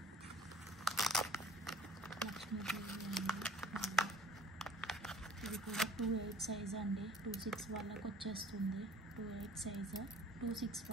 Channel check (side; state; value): both; normal; correlation 0.50